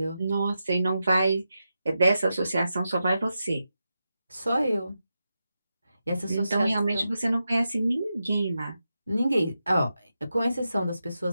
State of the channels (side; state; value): both; inverted; correlation -0.89